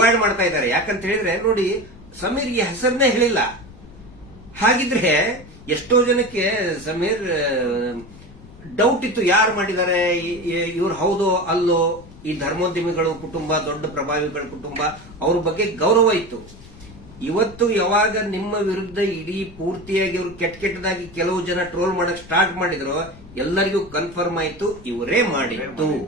ಮಾಡ್ತಾ ಇದ್ದಾರೆ. ಯಾಕಂತ ಹೇಳಿದ್ರೆ ನೋಡಿ, ಸಮೀರ್ಗೆ ಹೆಸರನ್ನೇ ಹೇಳಿಲ್ಲ. ಹಾಗಿದ್ರೆ ಎಷ್ಟೋ ಜನಕ್ಕೆ ಸಮೀರ್ ಡೌಟ್ ಇತ್ತು, ಯಾರು ಮಾಡಿದ್ದಾರೆ, ಇವ್ರು ಹೌದೋ ಅಲ್ಲೋ. ಈ ಧರ್ಮೋದ್ಯಮಿಗಳು ಕುಟುಂಬ, ದೊಡ್ಡ ಪ್ರಭಾವಿಗಳ ಕುಟುಂಬ, ಅವ್ರ ಬಗ್ಗೆ ಗೌರವ ಇತ್ತು. ಇವತ್ತು ಯಾವಾಗ ನಿಮ್ಮ ವಿರುದ್ಧ ಇಡೀ ಪೂರ್ತಿಯಾಗಿ ಇವರು ಕೆಟ್ಟದಾಗಿ ಕೆಲವು ಜನ ಟ್ರೋಲ್ ಮಾಡಕ್ ಸ್ಟಾರ್ಟ್ ಮಾಡಿದ್ರು, ಎಲ್ಲರಿಗೂ ಕನ್ಫರ್ಮ್ ಆಯ್ತು ಇವರೇ ಮಾಡಿದ್ದು,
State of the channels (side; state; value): left; noise; rumble, 19 dB below the sound